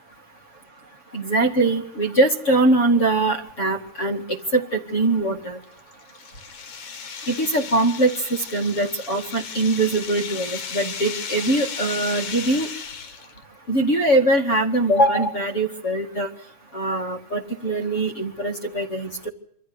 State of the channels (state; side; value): late; right; 7.1 ms